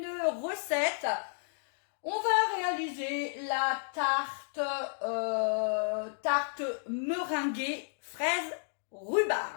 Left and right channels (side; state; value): right; silent; digital silence